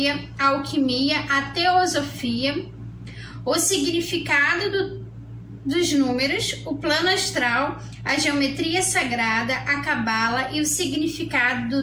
a alquimia, a teosofia, o significado dos números, o plano astral, a geometria sagrada, a cabala e o significado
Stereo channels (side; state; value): both; identical; correlation 1.00